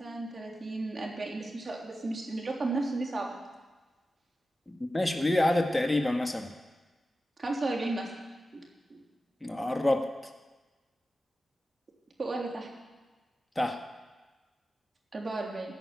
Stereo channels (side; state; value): both; normal; correlation 0.93